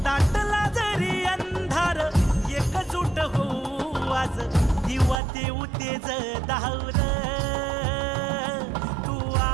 दाटला जरी अंधार एकजूट होऊ आज दिवा देऊ तेज धावून तू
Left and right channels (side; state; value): left; drops out; at 5.2 s